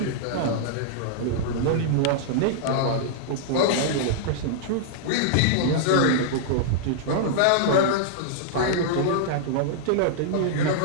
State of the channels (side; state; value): both; different; correlation -0.01